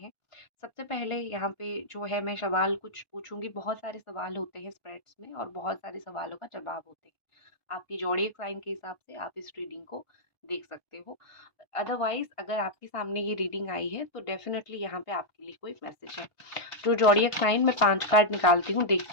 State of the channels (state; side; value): late; right; 1.5 ms